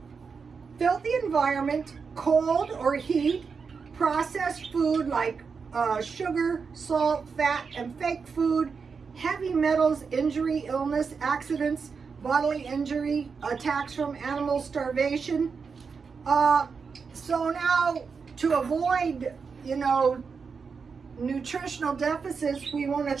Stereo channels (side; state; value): left; quieter; 5.4 dB